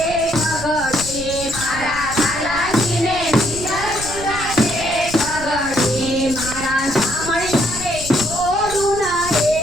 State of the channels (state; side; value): noise; right; rumble, 11 dB below the sound